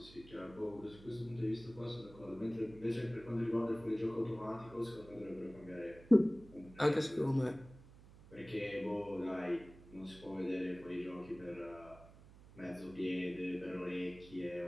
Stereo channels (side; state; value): right; noise; hum, 20 dB below the sound